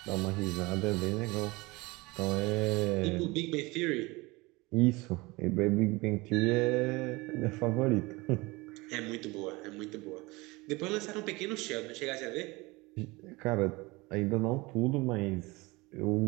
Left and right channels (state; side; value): quieter; left; 23.3 dB